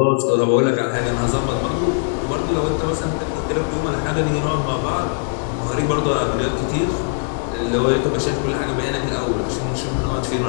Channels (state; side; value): silent; right; 62 dB below the other